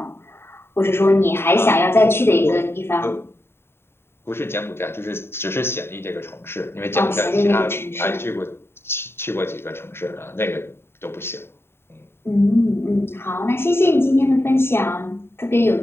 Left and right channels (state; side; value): late; right; 0.11 ms